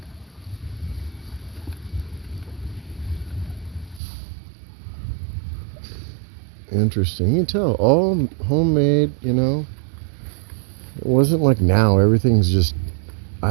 Interesting. You can tell, all homemade, It wasn't like now. Everything's just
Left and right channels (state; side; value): drops out; left; at 4.0 s